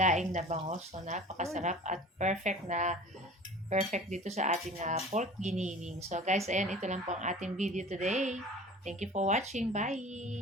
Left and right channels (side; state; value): both; normal; correlation 0.42